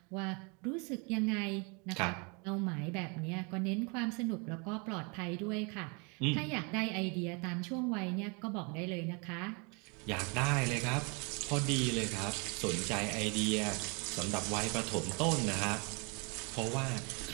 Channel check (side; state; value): left; quieter; 32.3 dB